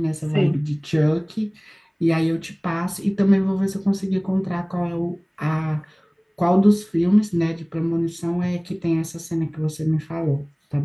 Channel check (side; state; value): both; identical; correlation 1.00